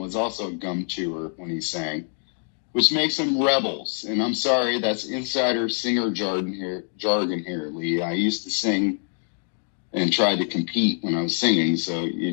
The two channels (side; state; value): right; silent; 57 dB below the other